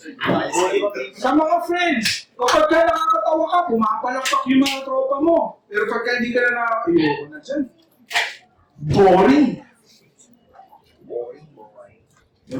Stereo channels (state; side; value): identical; both; correlation 1.00